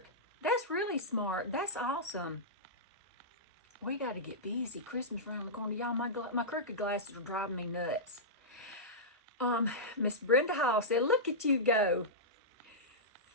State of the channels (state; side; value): normal; both; correlation -0.14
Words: That's really smart. That's awesome. We got to get busy. Christmas around the corner. Y'all, my crooked glasses are driving me nuts. Miss Brenda Hall said, look at you go.